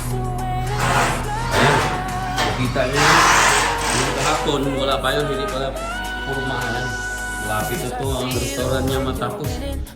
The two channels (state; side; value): identical; both; correlation 1.00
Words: Ayan, nakita nyo yun. Yung kahapon, wala pa yun, hindi pala purmahan. Lapit ito ang restaurant niya matapos.